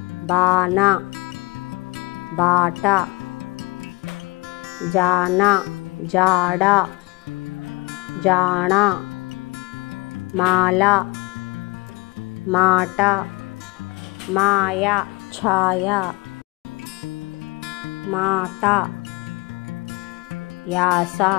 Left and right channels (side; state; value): right; quieter; 25.3 dB